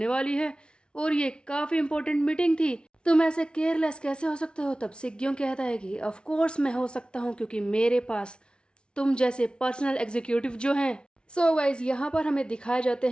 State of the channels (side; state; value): right; late; 0.056 ms